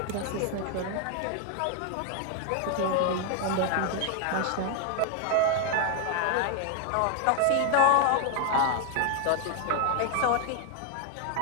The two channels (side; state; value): both; different; correlation 0.00